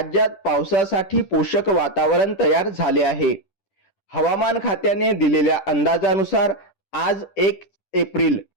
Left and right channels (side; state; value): right; late; 10 ms